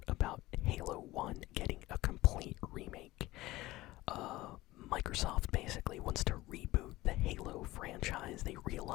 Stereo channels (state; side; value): quieter; right; 18.3 dB